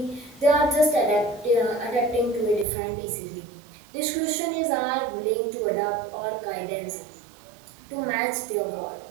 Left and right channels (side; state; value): left; drops out; at 2.7 s